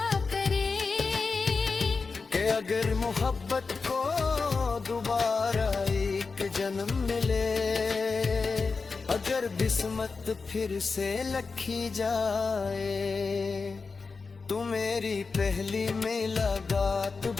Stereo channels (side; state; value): right; quieter; 4.5 dB